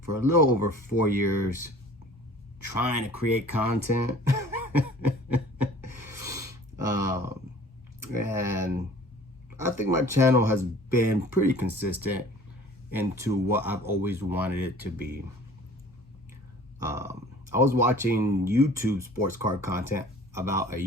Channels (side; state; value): both; normal; correlation 0.48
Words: for a little over 4 years, trying to create content. And I think my channel has been pretty consistent into what I've always wanted it to be. I was watching YouTube sports card content about a